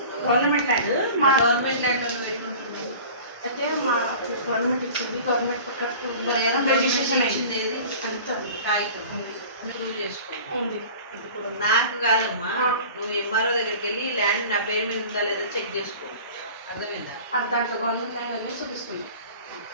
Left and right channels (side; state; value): both; inverted; correlation -0.41